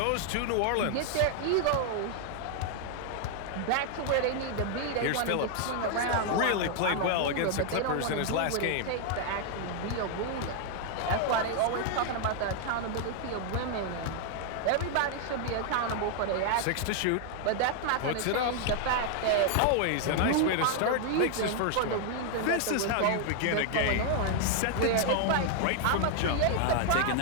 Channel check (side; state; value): both; different; correlation 0.00